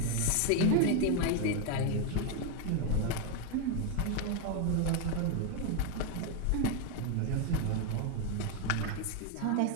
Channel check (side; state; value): both; different; correlation 0.01